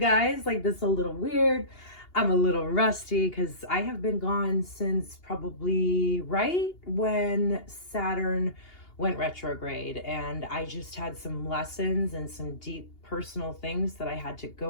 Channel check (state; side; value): late; right; 2.8 ms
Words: like this is a little weird. I'm a little rusty because I have been gone since probably right when Saturn went retrograde, and I just had some lessons and some deep personal things that I had to